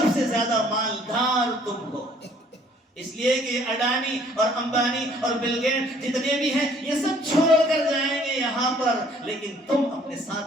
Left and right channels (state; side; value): normal; both; correlation 0.59